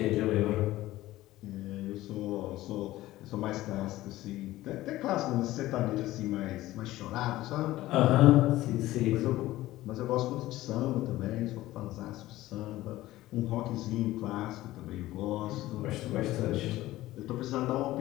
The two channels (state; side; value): quieter; right; 16.4 dB